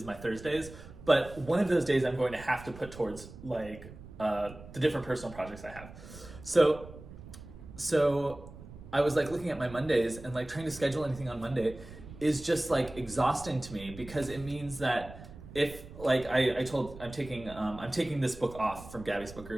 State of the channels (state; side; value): noise; right; rumble, 16 dB below the sound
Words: my Thursdays, but one of those days I'm going to have to put towards like the different personal projects I have. So I was like looking at my Mondays, and like trying to schedule anything on Monday is just like exhausting to me, because it means that if like I'm taking this book off from Gabby's book